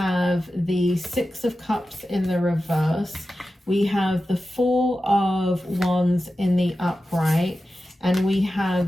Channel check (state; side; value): normal; both; correlation 0.93